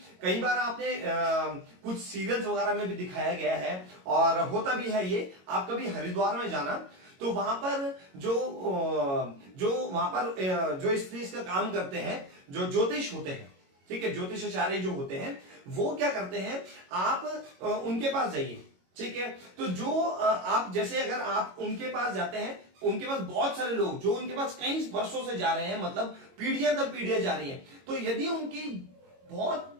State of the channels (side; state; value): left; late; 22 ms